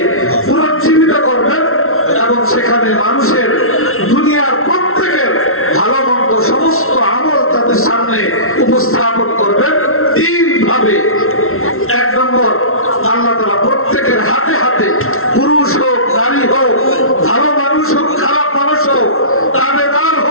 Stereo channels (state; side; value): late; right; 0.62 ms